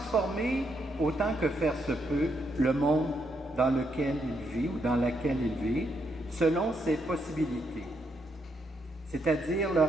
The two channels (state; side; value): normal; both; correlation 0.78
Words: autant que faire se peut le monde dans lequel il vit ou dans laquelle il vit, selon ses possibilités, c'est-à-dire le